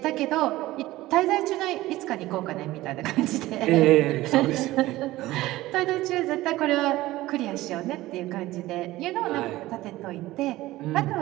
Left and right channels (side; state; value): left; quieter; 17.2 dB